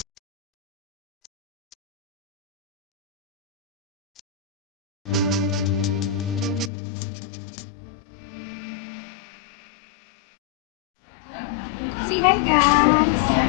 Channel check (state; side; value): drops out; right; at 6.7 s